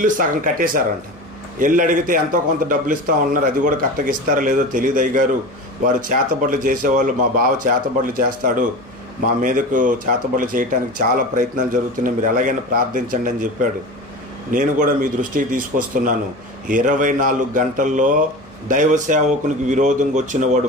సగం కట్టేశారంట. ఇల్లు అడిగితే ఎంతో కొంత డబ్బులు ఇస్తా ఉన్నారు, అది కూడా కరెక్ట్గా ఇస్తారో లేదో తెలియదు అయ్యగారు. వారు చేతబడులు చేసేవాళ్ళు, మా బావ చేతబడులు చేస్తాడు, మా మీదకు చేతబడులు చేయడానికి చాలా ప్రయత్నాలు జరుగుతున్నాయి, మీరు ఎలాగైనా ప్రార్థించండి అని చెప్పాడు. నేను కూడా మీ దృష్టికి తీసుకొస్తున్నాను. 24 గంటల్లో దైవ సేవకునికి విరోధంగా వచ్చిన వాడు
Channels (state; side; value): normal; both; correlation 0.30